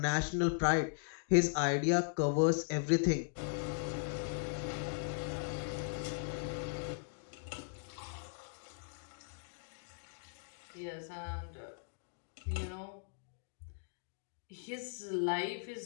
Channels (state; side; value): silent; right; digital silence